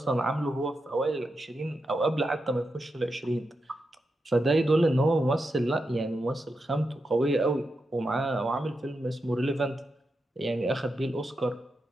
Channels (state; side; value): normal; both; correlation 0.87